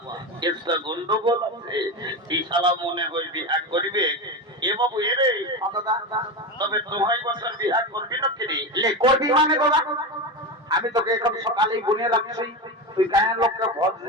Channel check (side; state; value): both; normal; correlation 0.20